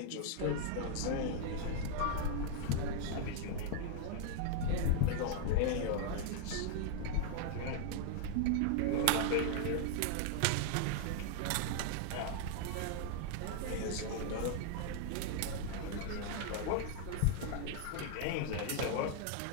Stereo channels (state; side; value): different; both; correlation 0.00